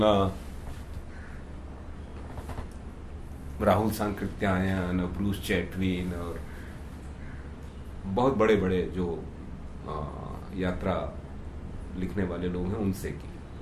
राहुल सांकृत्यायन और ब्रूस चैटविन और बहुत बड़े बड़े जो यात्रा लिखने वाले लोग हैं उनसे की।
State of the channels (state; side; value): identical; both; correlation 1.00